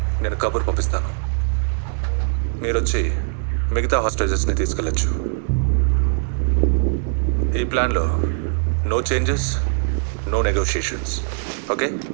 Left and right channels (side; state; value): left; silent; digital silence